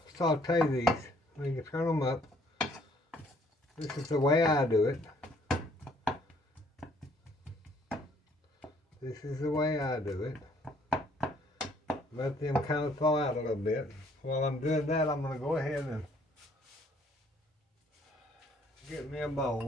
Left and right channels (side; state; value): both; normal; correlation 0.63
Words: saute these. You can turn them up. This is the way I do it. This is the way I do it. Let them kind of thaw out a little bit. While I'm doing that, I'm going to go ahead and get me a